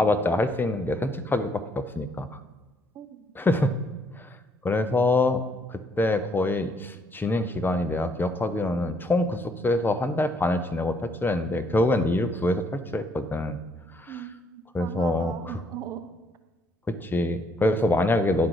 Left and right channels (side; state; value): both; normal; correlation 0.69